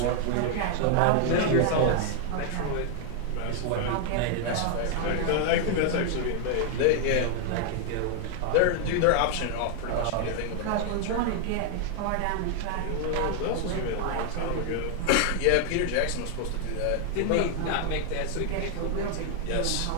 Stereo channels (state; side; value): different; both; correlation 0.00